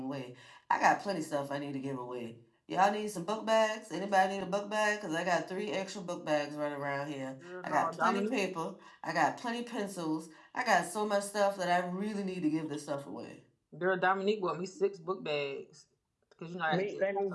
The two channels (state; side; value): identical; both; correlation 1.00